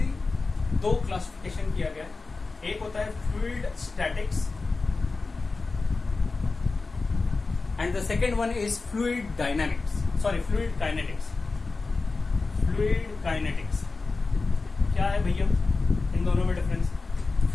दो क्लासिफिकेशन किया गया है। एक होता है fluid statics and the second one is fluid kinetics. Fluid kinetics क्या है भैया, इन दोनों में डिफरेंस?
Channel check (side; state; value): right; quieter; 3.9 dB